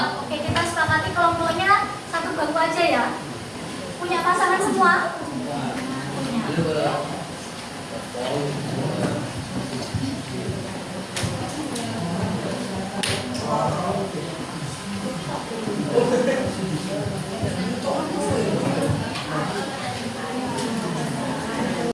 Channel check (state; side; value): identical; both; correlation 1.00